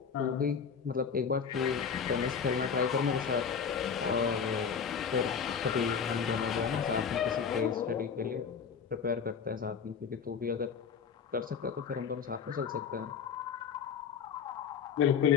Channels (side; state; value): right; quieter; 6.6 dB